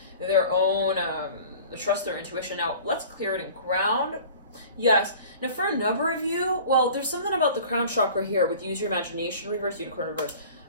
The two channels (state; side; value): inverted; both; correlation -0.44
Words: their own, trust their intuition. Now, let's clear it and ground. Yes. Now, for a number of you, well, there's something about the crown chakra here with use your imagination reverse, unicorn reverse.